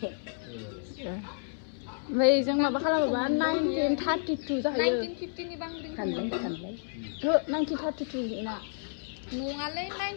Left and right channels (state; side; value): silent; right; 57 dB below the other